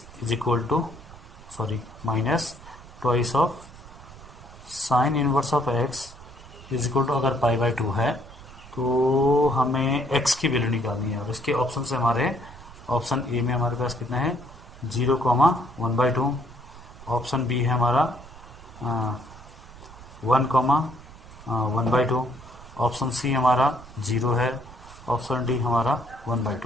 is equal to, sorry minus twice of sine inverse of x is equal to, अगर pi by 2 है तो हमें x की वैल्यू निकालनी है। और इसके ऑप्शन से हमारे, ऑप्शन ए में हमारे पास कितना है 0,1/2, ऑप्शन बी है हमारा 1,1/2, ऑप्शन सी हमारा 0 है, ऑप्शन डी हमारा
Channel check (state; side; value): noise; right; rumble, 19 dB below the sound